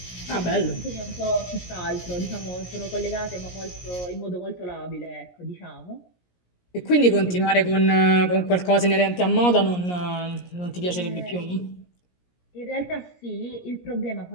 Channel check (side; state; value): right; late; 17 ms